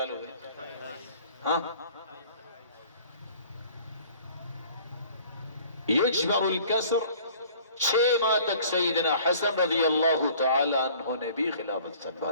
ہوئے؟ ہاں، یجبر الکسر 6 ماہ تک سیدنا حسن رضی اللہ تعالی عنہ نے بھی خلافت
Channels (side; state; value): both; inverted; correlation -0.51